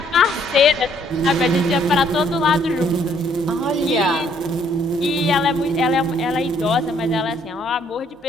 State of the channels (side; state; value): both; normal; correlation 0.66